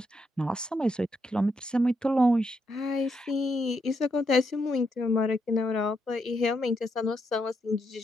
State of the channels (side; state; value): both; normal; correlation 0.79